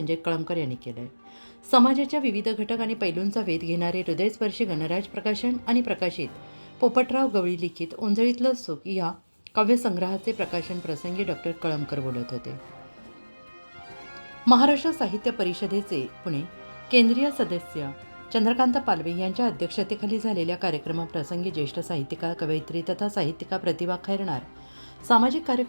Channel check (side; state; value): both; inverted; correlation -1.00